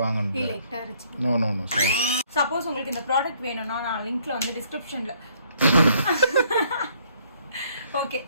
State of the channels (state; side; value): inverted; both; correlation -0.64